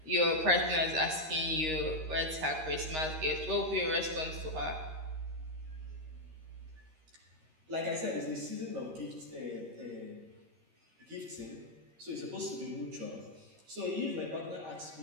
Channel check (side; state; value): left; late; 13 ms